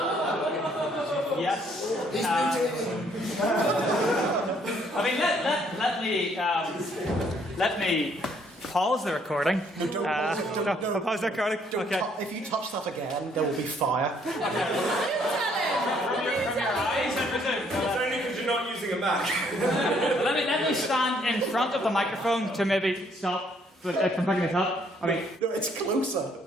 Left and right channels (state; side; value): normal; both; correlation 0.66